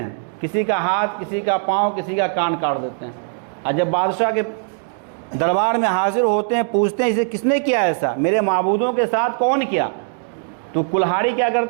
کسی کا ہاتھ، کسی کا پاؤں، کسی کا کان کاٹ دیتے ہیں، اور جب بادشاہ کے دربار میں حاضر ہوتے ہیں پوچھتے ہیں اسے کس نے کیا ایسا، میرے معبودوں کے ساتھ کون کیا؟ تو کلہاڑی کیا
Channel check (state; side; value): silent; left; 62 dB below the other